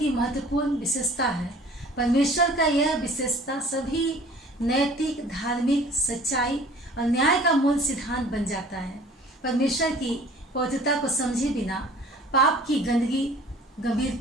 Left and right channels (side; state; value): both; normal; correlation 0.49